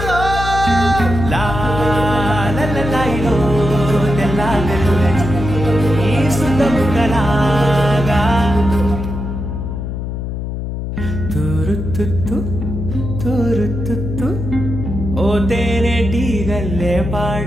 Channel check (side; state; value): left; noise; hum, 5 dB below the sound